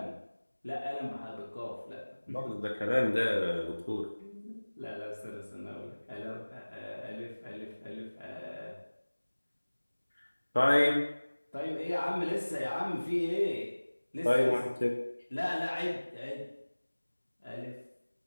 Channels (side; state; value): both; inverted; correlation -1.00